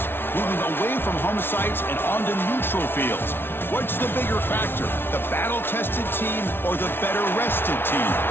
moving away from home sites and onto neutral fields. What's the bigger factor, the battle-tested team or the better-rested team?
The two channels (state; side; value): late; right; 0.11 ms